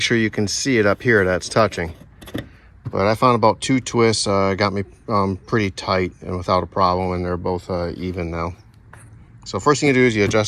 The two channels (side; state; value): both; identical; correlation 1.00